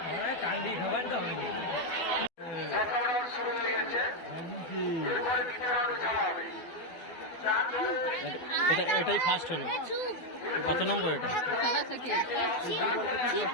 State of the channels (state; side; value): late; right; 12 ms